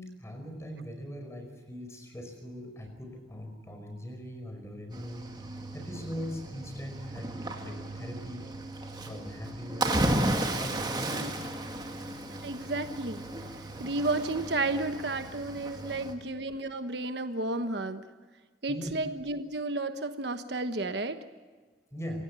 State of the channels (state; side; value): normal; both; correlation 0.36